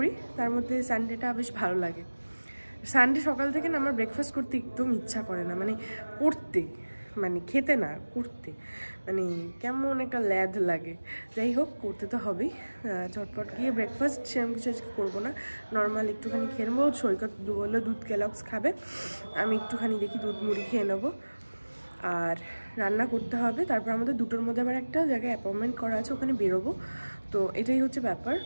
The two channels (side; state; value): both; inverted; correlation -1.00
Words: তার মধ্যে সানডেটা বেশ ভালো লাগে সানডে সকাল থেকে না আমার ব্রেকফাস্ট করতে একদম ইচ্ছা করে না মানে করতে মানে খেতে না করতে মানে কেমন একটা ল্যাদ লাগে যাই হোক করতে তো হবেই ঝটপট গিয়ে ব্রেকফাস্ট সেরকম কিছু আজকে করবো না নর্মাল একটুখানি খেয়ে নেবো সৈকত বললো দুধ কেলগস খাবে আমি একটুখানি দেখি দুধ মুড়ি খেয়ে নেবো আর রান্না করতে হবে তারপর আমাদের দুটোর মধ্যে আবার একটা জায়গায় অ্যাপয়েন্টমেন্ট করা আছে ওখানে বেরোবো তো এটাই হচ্ছে ব্যাপার